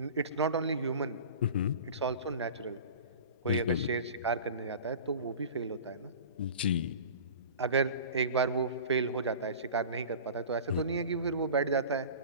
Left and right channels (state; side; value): inverted; both; correlation -0.37